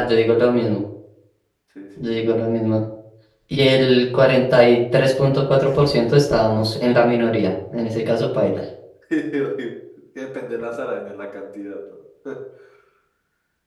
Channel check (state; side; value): identical; both; correlation 1.00